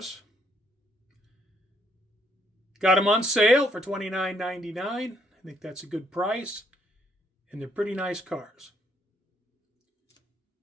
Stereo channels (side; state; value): both; normal; correlation 0.70